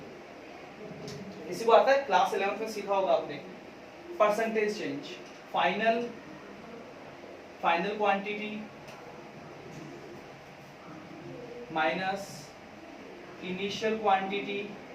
इसी को आता है क्लास 11th में सीखा होगा आपने, percentage change, final quantity minus initial quantity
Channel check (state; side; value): identical; both; correlation 1.00